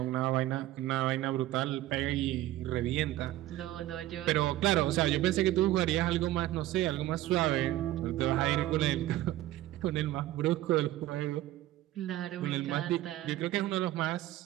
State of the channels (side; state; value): left; quieter; 15.1 dB